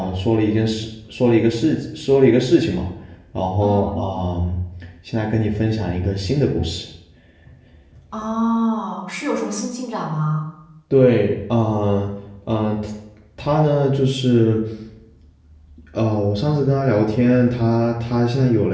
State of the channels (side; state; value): both; identical; correlation 1.00